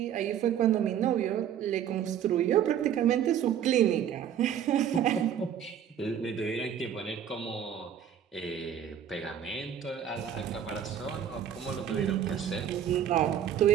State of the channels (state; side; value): quieter; left; 9.2 dB